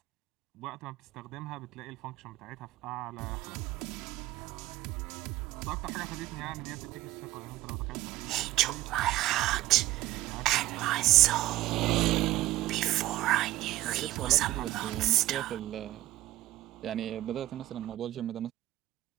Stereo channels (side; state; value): left; quieter; 15.8 dB